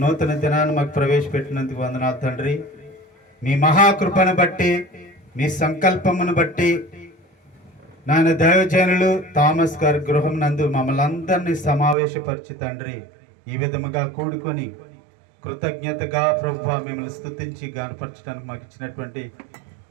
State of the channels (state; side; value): drops out; left; at 12.0 s